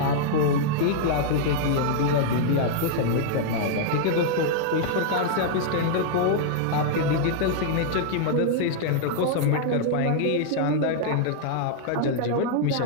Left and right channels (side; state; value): both; different; correlation -0.01